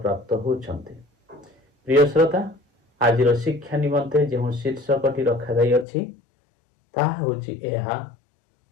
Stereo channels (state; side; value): drops out; right; at 5.9 s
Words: होउछन्ति। प्रिय श्रोता आज शिक्षा निमंते जो शीर्षकटी रखा जाई अछि ताहा होछि एहा